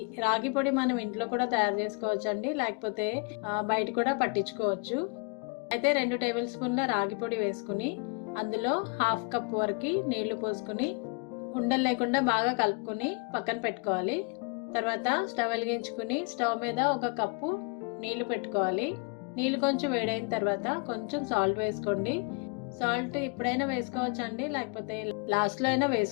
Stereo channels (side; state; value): right; quieter; 34.4 dB